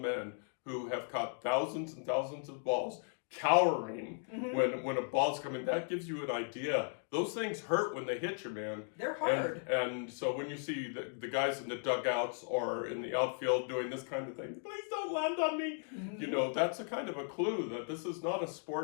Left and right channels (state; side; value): silent; right; 53 dB below the other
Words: who have caught thousands and thousands of balls cowering when a ball's coming, that gives you an idea. Those things hurt when they hit you, man. They're hard. And so when you see the guys in the dugouts or in the outfield doing this kind of thing, please don't land on me. That's a kind of a clue that this is not a